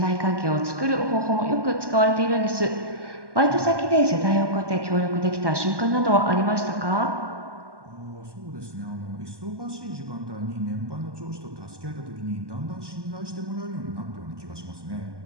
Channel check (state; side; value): late; left; 1.2 ms